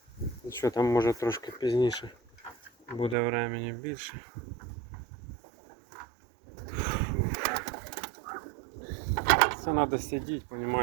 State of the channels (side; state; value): left; drops out; at 3.2 s